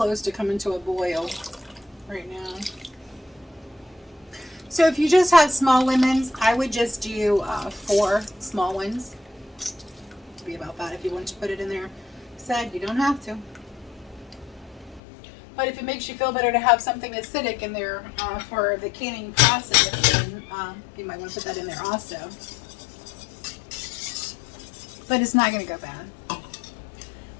to coming to a boil right now. So if you just have small lemons, I would just do 4 small ones. To be about that if you want to put it in there. Said you don't have to. But if it makes you feel better to have something acidic in there for the canning process, then you might want to put that in there also. But it's not going to go bad.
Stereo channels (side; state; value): right; drops out; at 15.0 s